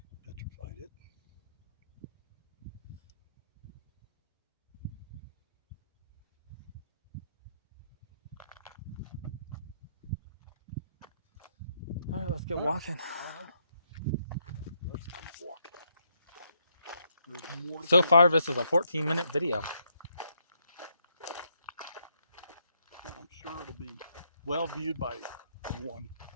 petrified it. All right, let's get walking. Let's keep walking. There's more. So far, this is a 14-minute video. I'm sure it'll be well viewed by one,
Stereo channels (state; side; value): inverted; both; correlation -0.76